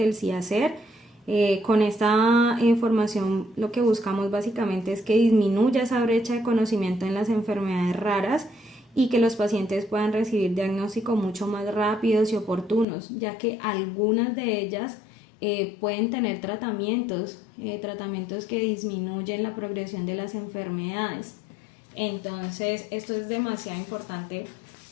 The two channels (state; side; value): drops out; right; at 12.9 s